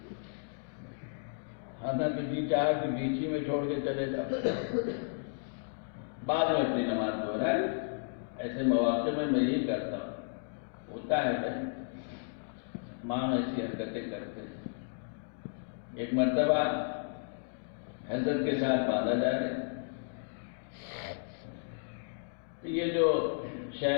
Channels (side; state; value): right; silent; digital silence